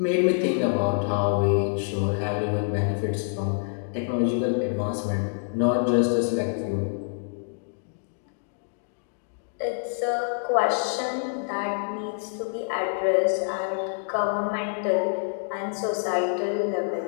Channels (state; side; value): silent; right; digital silence